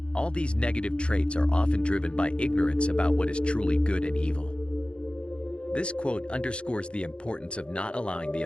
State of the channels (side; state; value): right; late; 0.057 ms